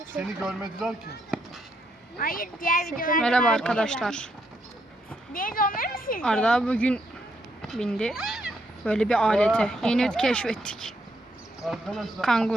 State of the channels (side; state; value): both; normal; correlation 0.77